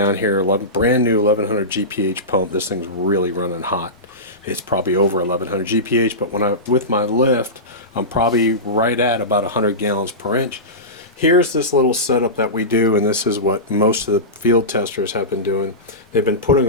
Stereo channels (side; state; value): both; normal; correlation -0.18